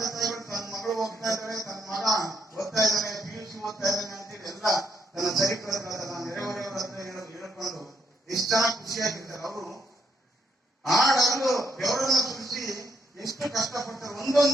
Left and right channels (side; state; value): both; normal; correlation 0.75